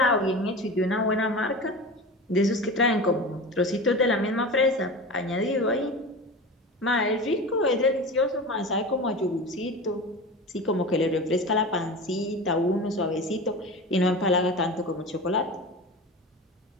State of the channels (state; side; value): normal; both; correlation 0.30